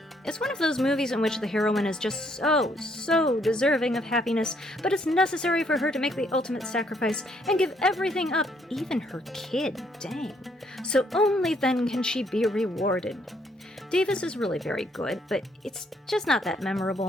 It's one of those movies in which the heroine is just so deserving of happiness, but it's necessary for her to make the ultimate sacrifice and give everything up, even her kid, dang. So only then can she be rewarded. Davis is really very good, but it's just not that memorable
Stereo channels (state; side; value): normal; both; correlation 0.69